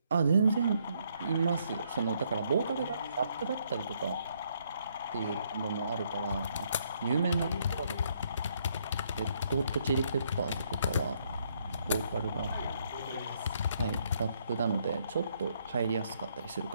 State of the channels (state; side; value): inverted; both; correlation -0.71